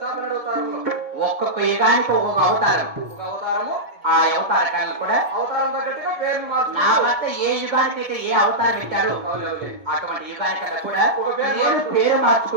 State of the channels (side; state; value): left; late; 1.7 ms